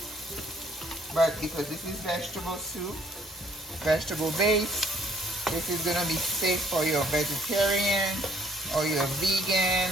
but because this is vegetable soup, vegetable base, this is gonna be safe for your vegetarian or your vegan.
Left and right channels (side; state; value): both; normal; correlation 0.62